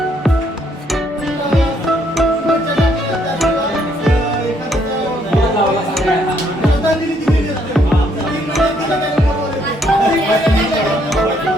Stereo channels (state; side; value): normal; both; correlation 0.69